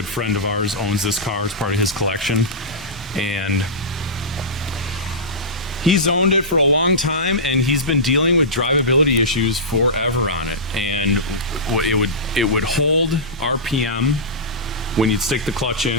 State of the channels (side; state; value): both; normal; correlation -0.16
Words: friend of ours, owns this car. It's part of his collection, and he's owned it for a long time, and he's been dealing with drivability issues forever on it. And it would hold RPM when you'd stick the clutch